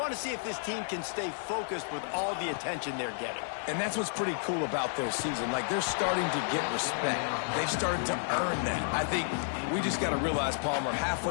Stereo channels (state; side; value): silent; right; digital silence